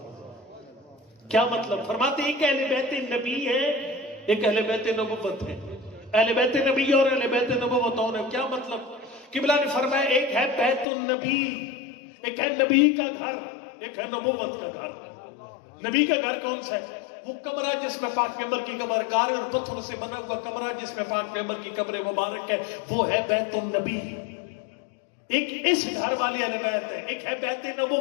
کیا مطلب؟ فرماتے ہیں ایک اہل بیت نبی ہے، ایک اہل بیت نبوت ہے۔ اہل بیت نبی اور اہل بیت نبوت اور ہے۔ کیا مطلب؟ قبلہ نے فرمایا ایک ہے بیت النبی، ایک ہے نبی کا گھر، ایک ہے نبوت کا گھر۔ نبی کا گھر کون سا ہے؟ وہ کمرہ جس میں پاک پیغمبر کی قبر، گارے اور پتھر سے بنا ہوا کمرہ جس میں پاک پیغمبر کی قبر مبارک ہے، وہ ہے بیت النبی۔ ایک اس گھر والی اہل بیت ہے، ایک ہے بیت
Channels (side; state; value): right; drops out; at 10.9 s